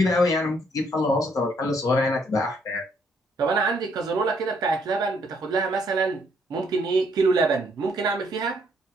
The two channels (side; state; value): both; normal; correlation 0.69